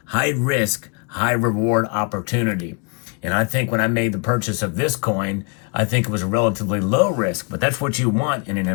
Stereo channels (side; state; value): right; quieter; 34.0 dB